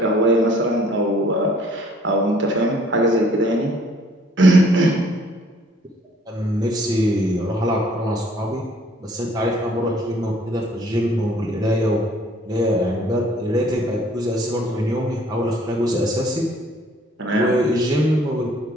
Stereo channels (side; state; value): both; normal; correlation 0.59